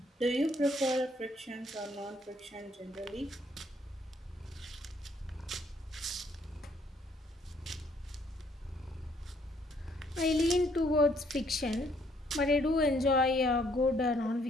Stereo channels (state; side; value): normal; both; correlation 0.67